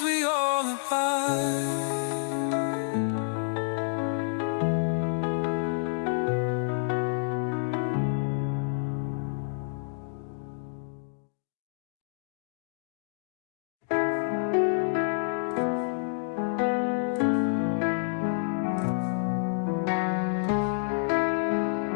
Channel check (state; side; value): silent; right; digital silence